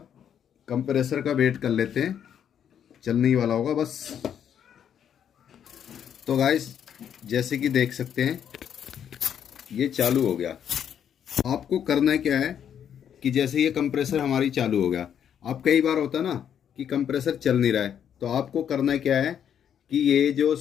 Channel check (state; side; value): quieter; right; 8.9 dB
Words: कंप्रेसर का वेट कर लेते हैं, चलने ही वाला होगा बस। तो गाइस जैसे कि देख सकते हैं ये चालू हो गया। आपको करना क्या है कि जैसे ये कंप्रेसर हमारी चालू हो गया, अब कई बार होता ना कि कंप्रेसर चल नहीं रहा है, तो आपको करना क्या है कि ये जो